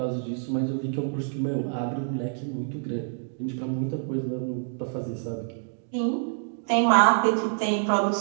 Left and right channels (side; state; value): left; silent; digital silence